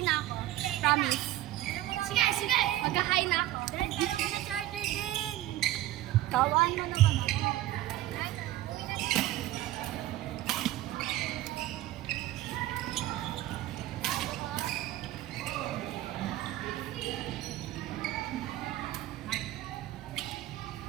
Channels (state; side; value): quieter; left; 14.9 dB